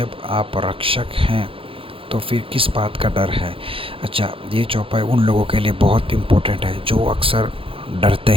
आप रक्षक हैं तो फिर किस बात का डर है। अच्छा, ये चौपाई उन लोगों के लिए बहुत इम्पोर्टेंट है जो अक्सर डरते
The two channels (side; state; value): left; late; 0.26 ms